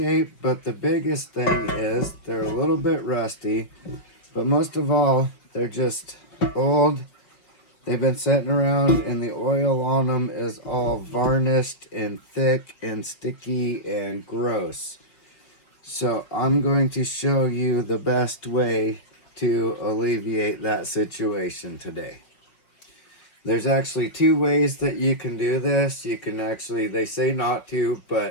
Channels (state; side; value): late; right; 5.3 ms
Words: but the biggest thing is they're a little bit rusty. But most of all, they're just old. They've been sitting around and the oil on them is all varnished and thick and sticky and gross. So I'm going to show you the best way to alleviate that situation today. There's actually two ways that you can do this. You can actually, they say not to,